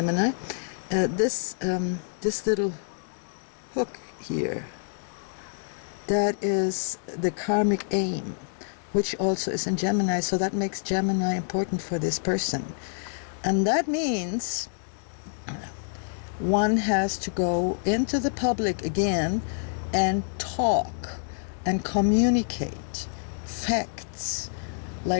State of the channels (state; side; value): silent; right; digital silence